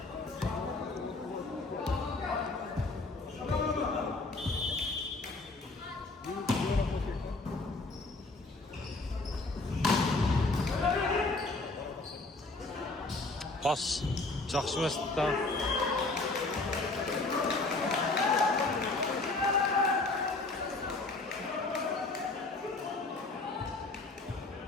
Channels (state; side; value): quieter; right; 3.3 dB